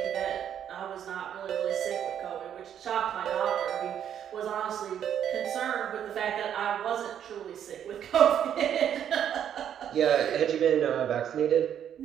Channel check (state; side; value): quieter; left; 9.4 dB